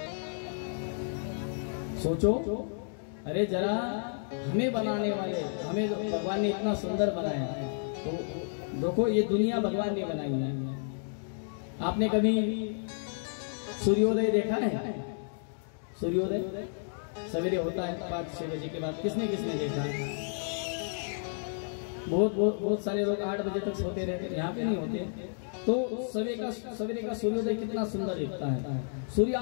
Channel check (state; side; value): silent; right; digital silence